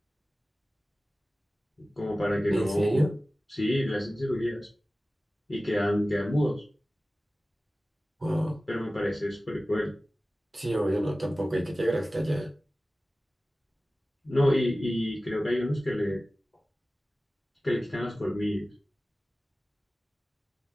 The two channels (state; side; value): normal; both; correlation 0.96